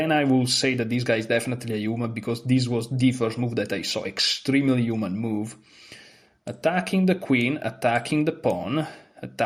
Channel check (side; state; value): both; identical; correlation 1.00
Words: I will say that this guy is definitely a human because this was the first move that I saw. Extremely human move. Attacking the queen, attacking the pawn,